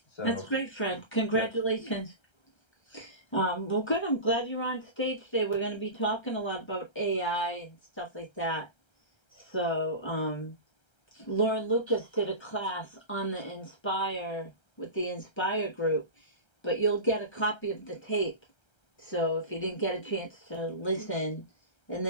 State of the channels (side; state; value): right; late; 1.3 ms